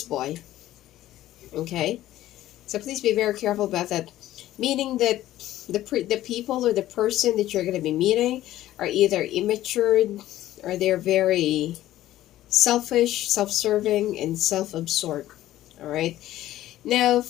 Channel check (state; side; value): quieter; right; 14.2 dB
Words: boy. Okay, so please be very careful about that. Meaning that the people or the person that you're going to be meeting are either immature, or they're very selfish, self-serving, and self-absorbed. All right. Now,